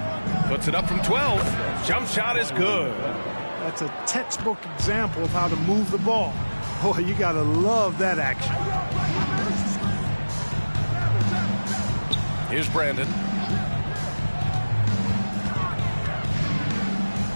Puts it up from 12. Jump shot is good. That's a textbook example of how to move the ball. Boy, you got to love that action. Here's Brandon.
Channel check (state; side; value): inverted; both; correlation -1.00